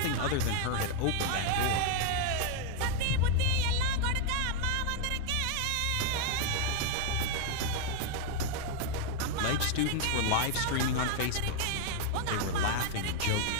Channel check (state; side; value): different; both; correlation 0.00